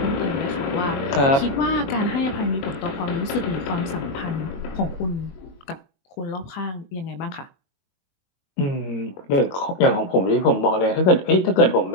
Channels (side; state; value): right; late; 22 ms